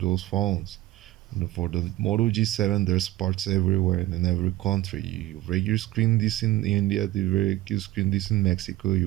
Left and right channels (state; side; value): quieter; left; 16.5 dB